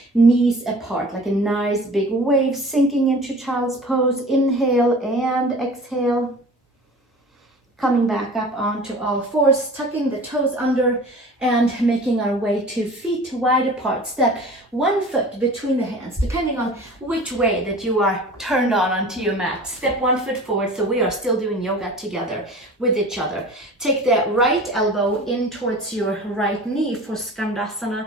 knees apart, like a nice big wave sinking into child's pose. Inhale and exhale. Coming back up onto all fours, tucking the toes under and making our way to feet wide apart. Step one foot between the hands, depending on which way that you are turned on onto your mat. Step 1 foot forward, so we are still doing yoga together with each other. Take the right elbow in towards your right knee for skandasana.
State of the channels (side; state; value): both; normal; correlation 0.41